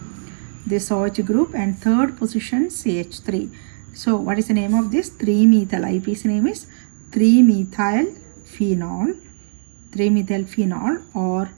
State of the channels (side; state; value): left; silent; digital silence